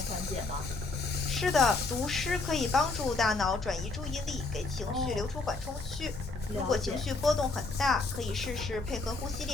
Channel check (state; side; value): quieter; right; 3.6 dB